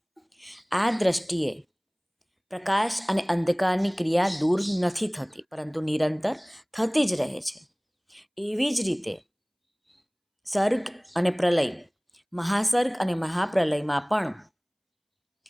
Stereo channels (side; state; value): both; identical; correlation 1.00